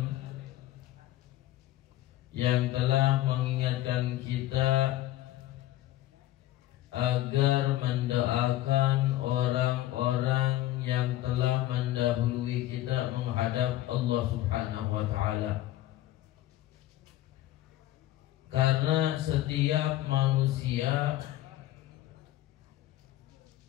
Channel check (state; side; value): quieter; right; 14.8 dB